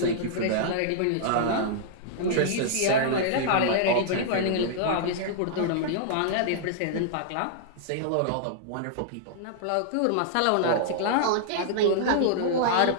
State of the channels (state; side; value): different; both; correlation -0.02